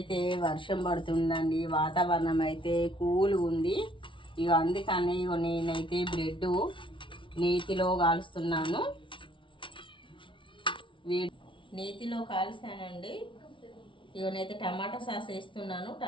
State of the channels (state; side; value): late; right; 0.25 ms